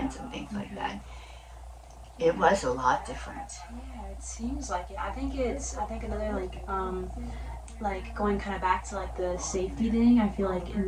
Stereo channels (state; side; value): identical; both; correlation 1.00